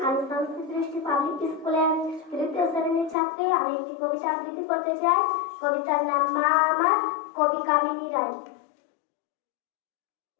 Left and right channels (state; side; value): drops out; right; at 3.2 s